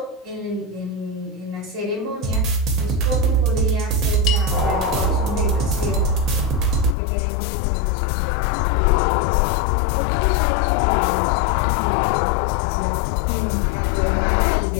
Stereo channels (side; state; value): right; drops out; at 7.0 s